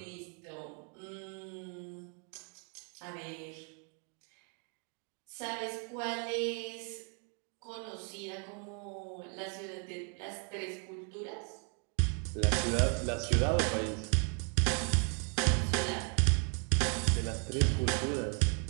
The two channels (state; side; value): quieter; left; 39.3 dB